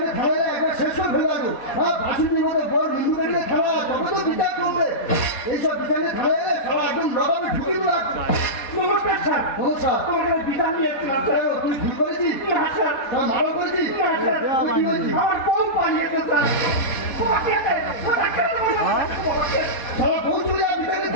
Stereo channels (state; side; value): late; right; 4.2 ms